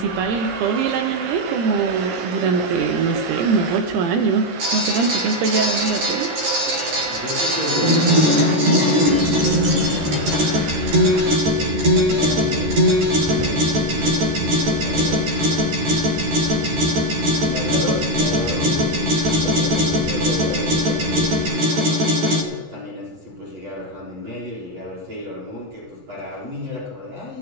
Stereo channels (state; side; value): late; left; 13 ms